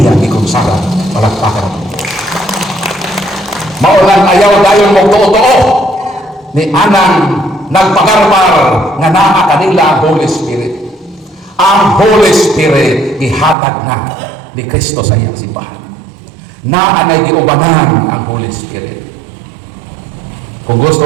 ikonsara. Palakpakan. Maulang ayaw dayon mo tuo-tuo ni anang nagpagarbar nga naa kanila ang Holy Spirit. Ang Holy Spirit ihatag na ni Kristo sa iyang simbahan. Naanay giubanan ang Holy Spirit. Kung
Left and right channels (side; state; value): left; drops out; at 13.6 s